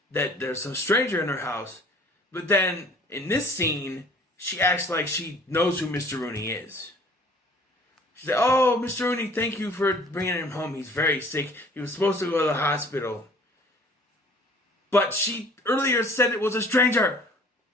that there's some stranger in her house. But then, in this scene, she acts like she knows who Mr. Rooney is. She said, "Oh, Mr. Rooney, thank you for bringing him home. He's very sick. He was supposed to go to the hospital." But she earlier said it was a stranger.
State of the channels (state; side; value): normal; both; correlation 0.52